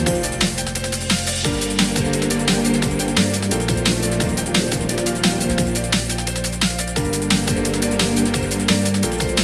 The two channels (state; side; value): identical; both; correlation 1.00